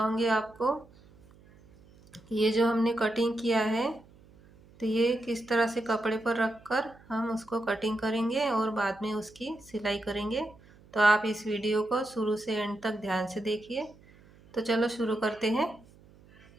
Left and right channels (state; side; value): noise; right; hum, 26 dB below the sound